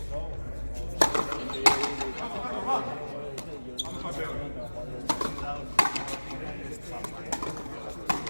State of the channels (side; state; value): both; inverted; correlation -1.00